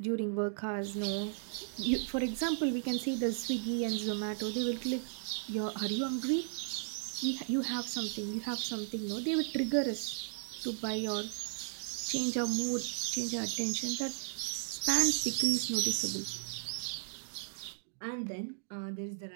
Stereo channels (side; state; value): left; silent; digital silence